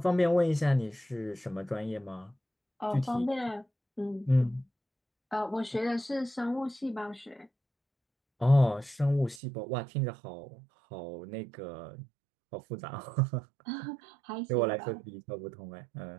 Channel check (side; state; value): left; drops out; at 9.4 s